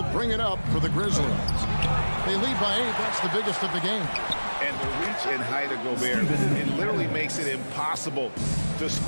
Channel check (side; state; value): both; inverted; correlation -1.00